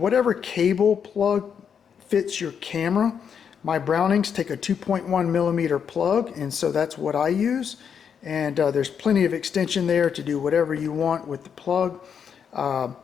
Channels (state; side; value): quieter; right; 7.4 dB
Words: cable plug fits your camera. My Brownings take a 2.1 millimeter plug, and so that's what I use. And there's plenty of extension there to do whatever you want with the plug.